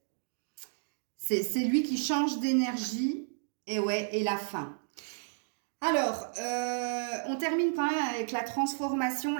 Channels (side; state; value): left; silent; digital silence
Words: C'est lui qui change d'énergie. Et ouais, et la fin. Alors, on termine quand même avec la transformation,